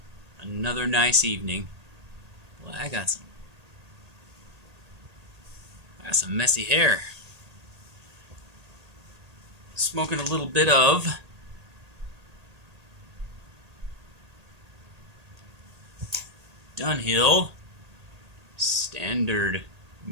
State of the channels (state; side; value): late; left; 1.8 ms